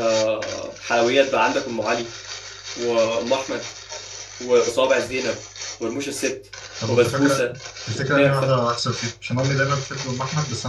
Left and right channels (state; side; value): identical; both; correlation 1.00